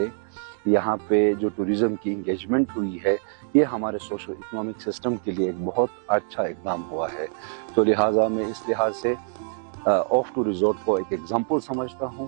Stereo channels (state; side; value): silent; left; digital silence